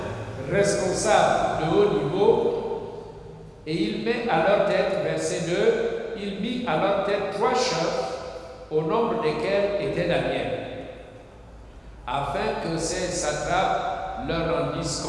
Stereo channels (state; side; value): identical; both; correlation 1.00